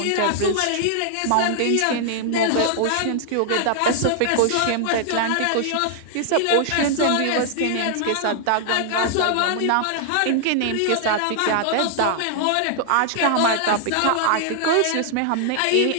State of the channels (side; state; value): both; different; correlation 0.00